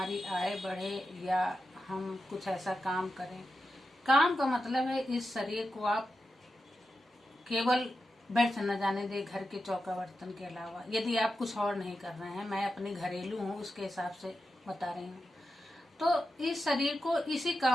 आय बढ़े या हम कुछ ऐसा काम करें। काम का मतलब है इस शरीर को आप केवल व्यर्थ न जाने दे घर के चौका बर्तन के अलावा। यदि आप कुछ और नहीं कर रहे हैं, मैं अपने घरेलू हूँ उसके हिसाब से बता रही हूँ, तो इस शरीर को इसी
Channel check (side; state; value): both; normal; correlation 0.90